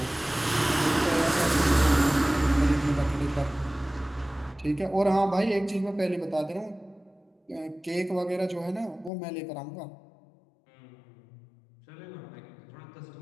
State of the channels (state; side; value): drops out; right; at 9.1 s